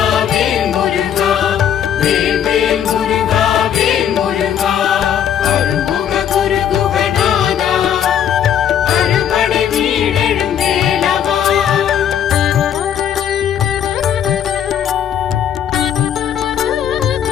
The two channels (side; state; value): right; quieter; 9.3 dB